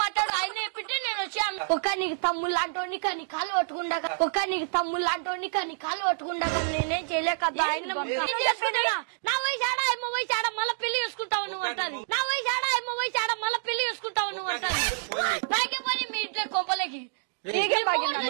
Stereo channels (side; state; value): left; silent; digital silence